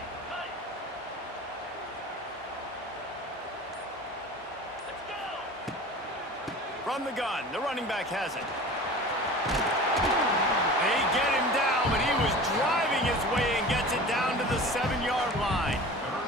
From the gun, the running back has it. They get him down, but he was driving his way and gets it down to the 7-yard line.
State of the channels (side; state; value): both; normal; correlation 0.38